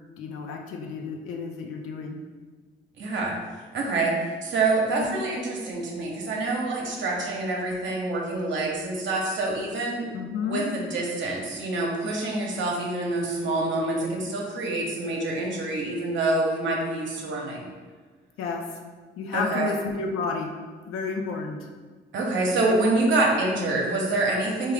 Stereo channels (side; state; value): both; normal; correlation 0.37